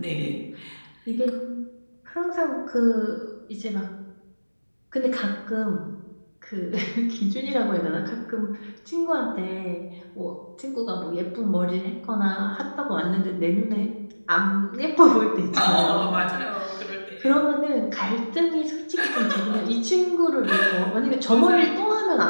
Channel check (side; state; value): both; inverted; correlation -1.00